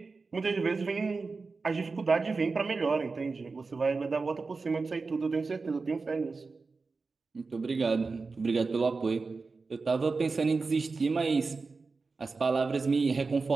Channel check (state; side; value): quieter; left; 4.2 dB